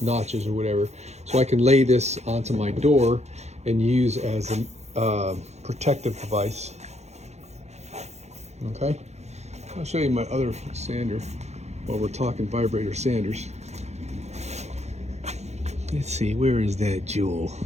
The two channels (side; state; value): left; late; 0.32 ms